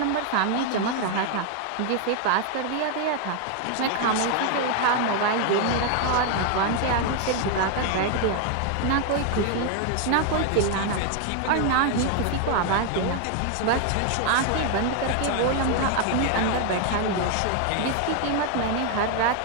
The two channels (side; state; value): both; different; correlation 0.00